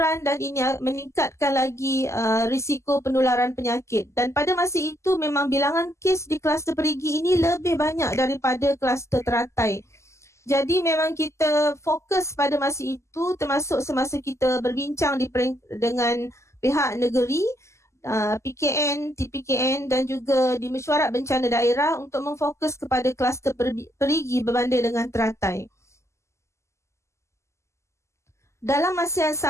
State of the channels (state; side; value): late; right; 0.13 ms